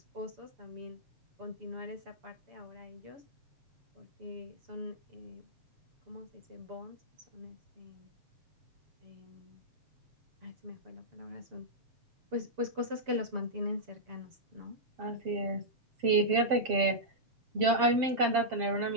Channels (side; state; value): left; late; 7.5 ms